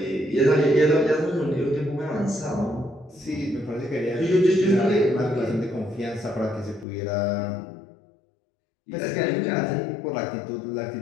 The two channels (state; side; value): drops out; right; at 6.9 s